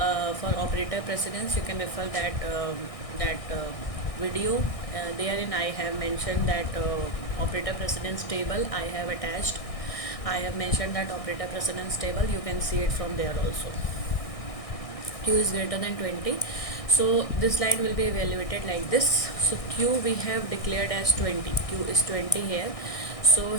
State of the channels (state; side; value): late; right; 1.6 ms